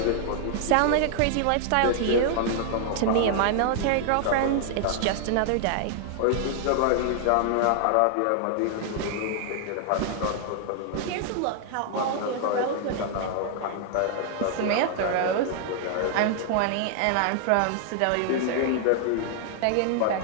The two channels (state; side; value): different; both; correlation 0.00